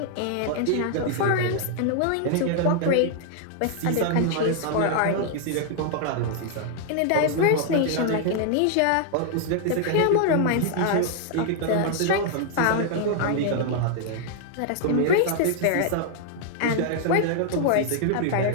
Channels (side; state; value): both; different; correlation 0.00